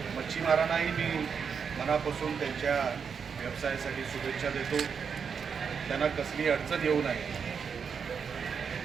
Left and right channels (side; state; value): left; quieter; 6.4 dB